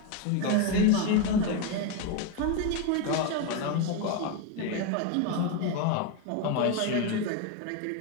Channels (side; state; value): both; different; correlation 0.02